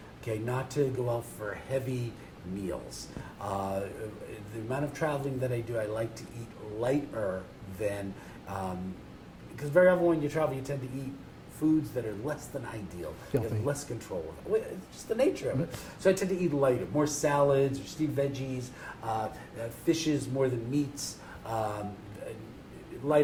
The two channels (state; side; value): identical; both; correlation 1.00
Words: Okay, not to go out for heavy meals. The amount of traveling that I do, I like to eat lighter than, because very often when you travel, you tend to eat foods that are less than ideal. You have less control of it. It's just the nature of it. So I tend to eat lighter, more salads or steamed veggies, fishes more than meats,